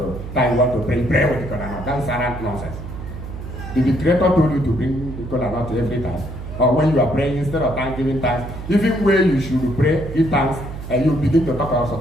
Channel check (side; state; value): right; noise; hum, 10 dB below the sound